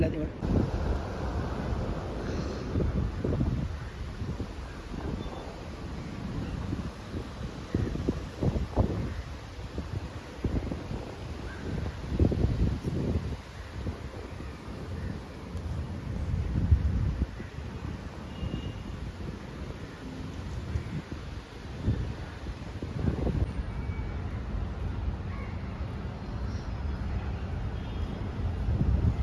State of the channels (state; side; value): identical; both; correlation 1.00